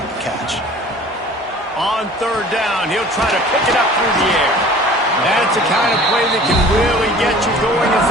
the catch. On 3rd down, he'll try to pick it up through the air. That's the kind of play that can really get you going as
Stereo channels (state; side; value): normal; both; correlation 0.46